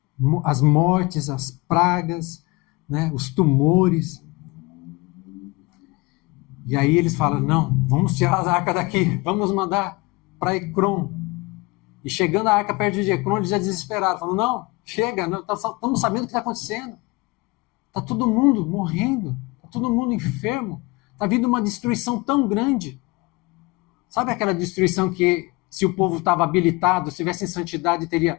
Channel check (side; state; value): right; quieter; 24.1 dB